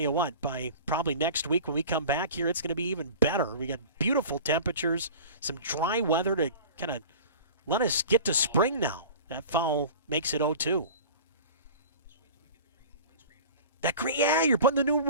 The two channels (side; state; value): both; inverted; correlation -0.38